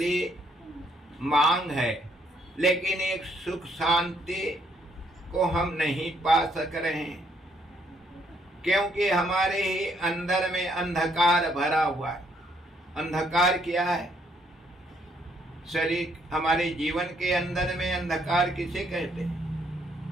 मांग है, लेकिन एक सुख शांति को हम नहीं पा सक रहे हैं, क्योंकि हमारे ही अंदर में अंधकार भरा हुआ है। अंधकार क्या है? शरीर, हमारे जीवन के अंदर में अंधकार किसे कहते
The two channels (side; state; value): both; normal; correlation 0.70